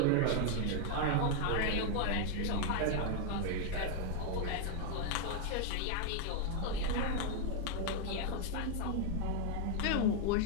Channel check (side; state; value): both; different; correlation 0.00